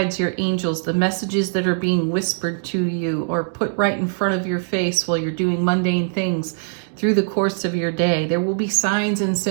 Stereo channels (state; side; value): silent; left; digital silence